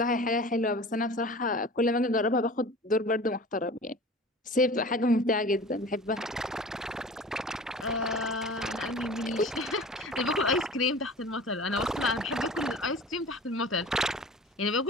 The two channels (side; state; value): both; normal; correlation 0.40